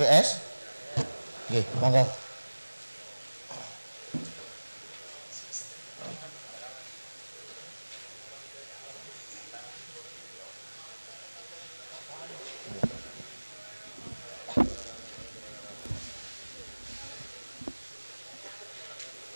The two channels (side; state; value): both; inverted; correlation -1.00